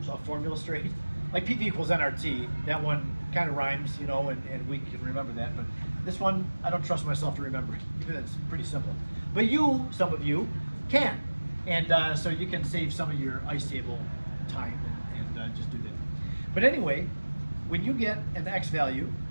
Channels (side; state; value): both; inverted; correlation -1.00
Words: a formula straight. Like PV equals nRT, that one kind of rhymes, you know, and we can remember that, but This one, I don't trust myself to remember, even though it's pretty simple. But some of you, can. And so you can save some of your ice table time and just do that. But anyway, when you get an X value